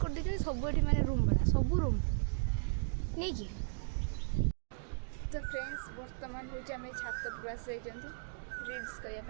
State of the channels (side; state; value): left; silent; digital silence